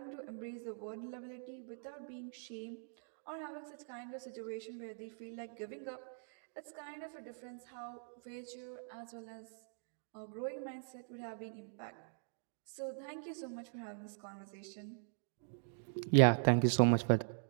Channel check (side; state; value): left; silent; digital silence